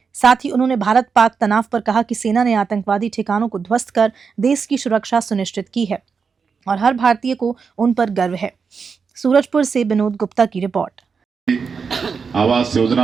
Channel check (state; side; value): quieter; left; 5.6 dB